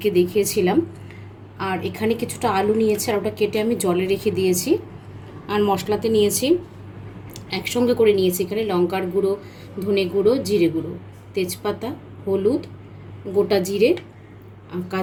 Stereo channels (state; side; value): identical; both; correlation 1.00